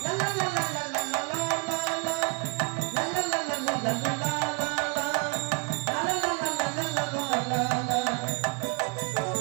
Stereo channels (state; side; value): quieter; left; 36.1 dB